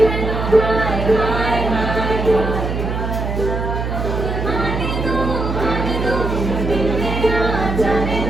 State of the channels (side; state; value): right; noise; hum, 3 dB below the sound